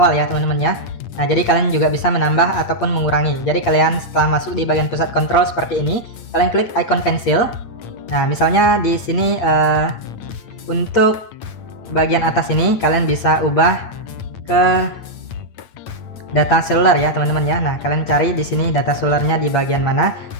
ya teman-teman ya. Nah, jadi kalian juga bisa menambah ataupun mengurangi. Jadi kalian setelah masuk di bagian pusat kontrol seperti ini, kalian klik icon pensil. Nah, misalnya di sini untuk bagian atas ini kalian bisa ubah ke data seluler ya teman-teman ya. Nah, kalian cari di sini data selulernya di bagian mana.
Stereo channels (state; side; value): late; right; 8.7 ms